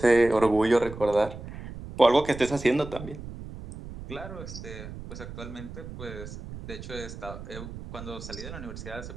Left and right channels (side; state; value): right; noise; rumble, 11 dB below the sound